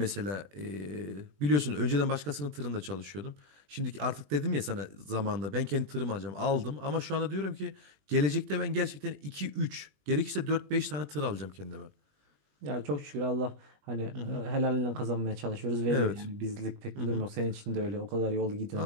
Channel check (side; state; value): left; late; 20 ms